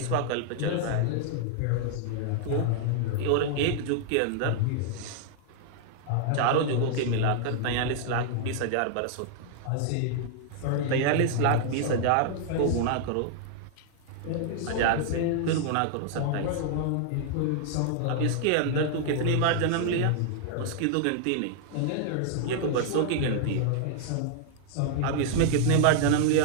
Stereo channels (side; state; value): both; different; correlation -0.01